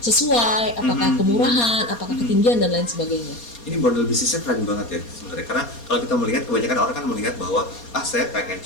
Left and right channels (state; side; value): late; right; 4.2 ms